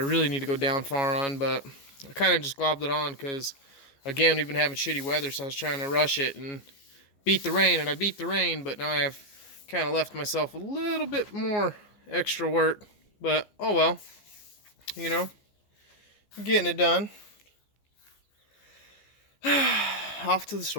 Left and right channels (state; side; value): late; right; 14 ms